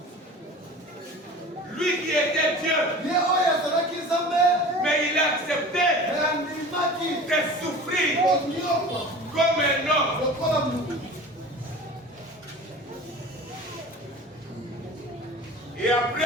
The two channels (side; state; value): both; normal; correlation 0.38